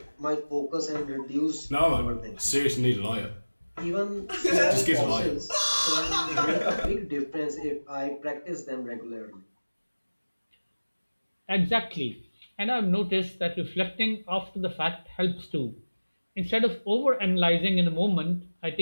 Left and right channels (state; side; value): inverted; both; correlation -1.00